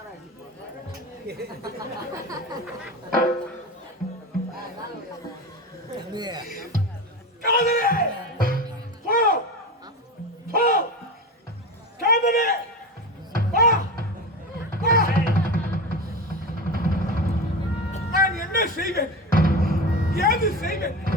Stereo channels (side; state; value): both; normal; correlation 0.24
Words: காதலே போ போ காதலே வா வா. நான் என்ன செய்வேன்? ஏது செய்வேன்?